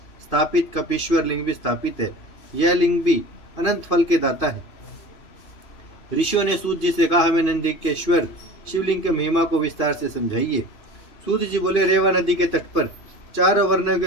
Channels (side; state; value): right; late; 3.0 ms